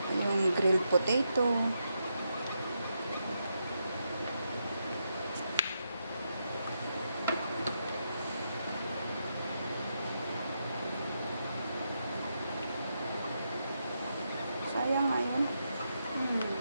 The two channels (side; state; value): both; inverted; correlation -0.83